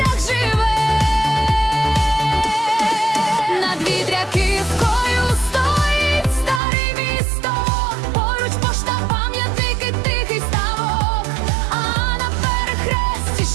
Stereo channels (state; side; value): drops out; left; at 6.6 s